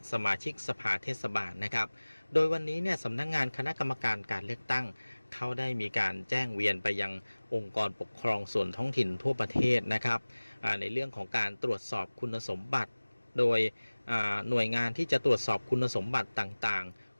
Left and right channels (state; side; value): inverted; both; correlation -1.00